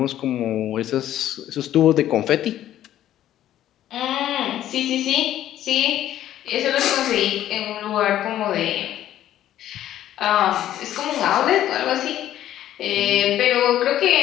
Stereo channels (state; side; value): quieter; right; 12.3 dB